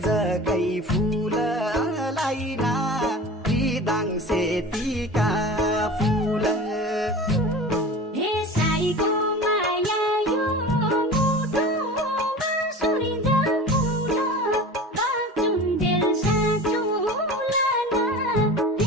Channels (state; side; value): normal; both; correlation 0.36